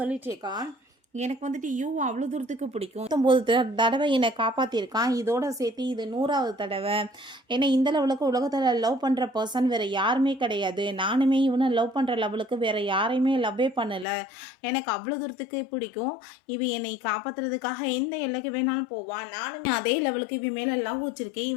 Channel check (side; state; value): right; drops out; at 14.1 s